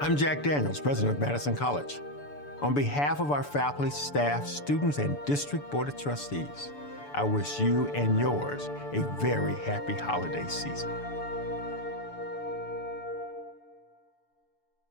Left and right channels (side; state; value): right; late; 6.9 ms